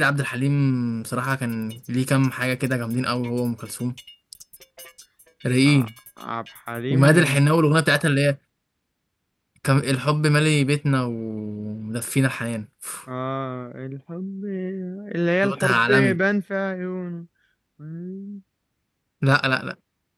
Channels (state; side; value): identical; both; correlation 1.00